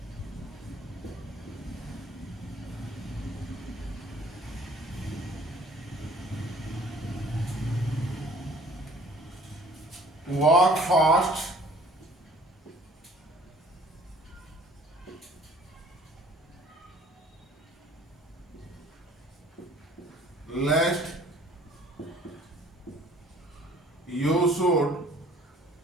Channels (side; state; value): both; normal; correlation 0.53